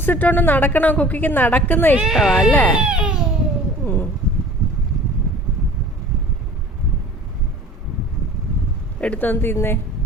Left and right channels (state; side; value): normal; both; correlation 0.44